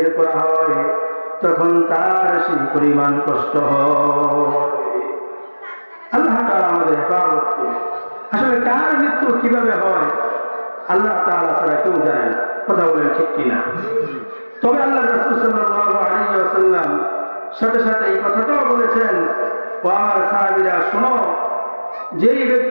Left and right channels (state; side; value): inverted; both; correlation -1.00